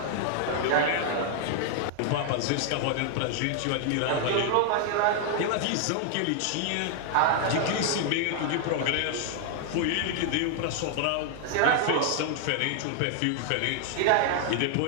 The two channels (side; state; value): both; different; correlation 0.00